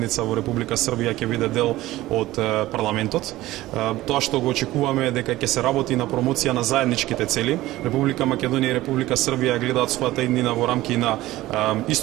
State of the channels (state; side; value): quieter; left; 16.8 dB